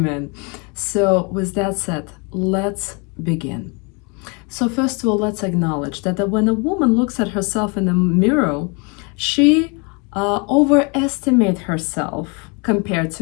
So, with that said, let's begin. So, first of all, let's acknowledge that when a woman looks at herself in the mirror, she overestimates herself compared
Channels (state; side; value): quieter; right; 32.5 dB